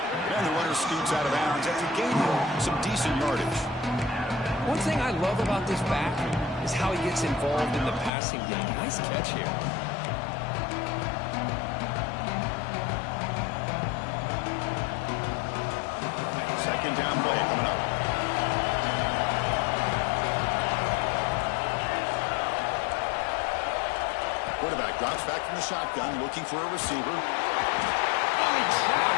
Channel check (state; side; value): drops out; right; at 8.1 s